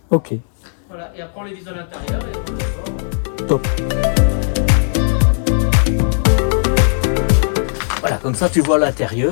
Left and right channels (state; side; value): silent; right; 68 dB below the other